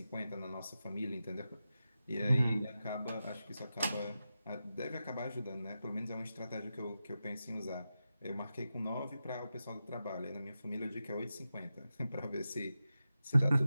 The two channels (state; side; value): inverted; both; correlation -0.91